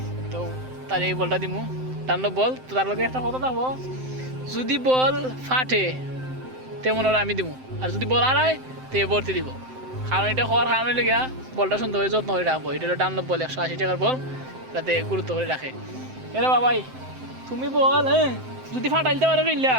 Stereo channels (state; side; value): late; left; 7.8 ms